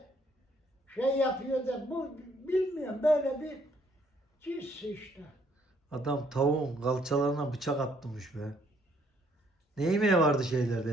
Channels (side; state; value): both; normal; correlation 0.67